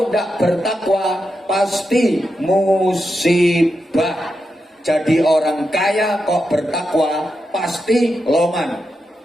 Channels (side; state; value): both; normal; correlation 0.87